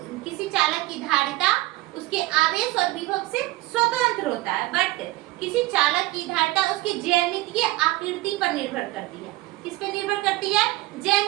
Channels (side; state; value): left; quieter; 19.0 dB